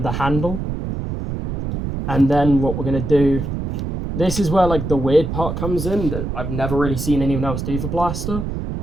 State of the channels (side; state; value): right; noise; rumble, 4 dB below the sound